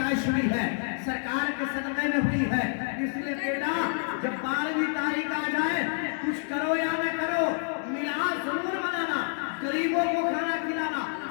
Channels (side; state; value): right; silent; 57 dB below the other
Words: हुई है सरकार के सदक़े में हुई है। इसलिए बेटा जब 12वीं तारीख आ जाए, कुछ करो या न करो, मिलाद जरूर मनाना, गरीबों को खाना खिलाना,